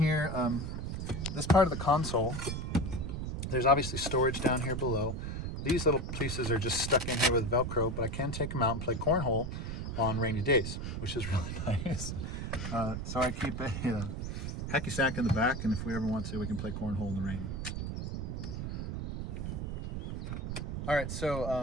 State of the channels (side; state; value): right; noise; rumble, 4 dB below the sound